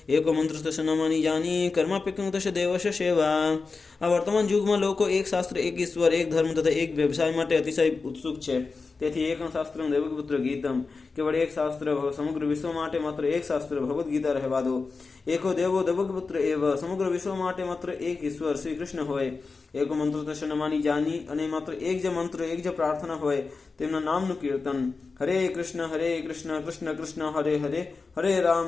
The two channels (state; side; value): quieter; right; 4.3 dB